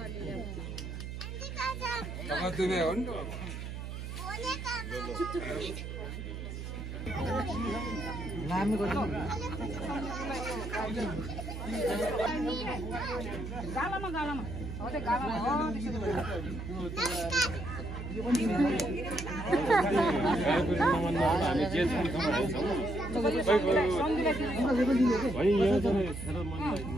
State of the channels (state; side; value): noise; right; hum, 7 dB below the sound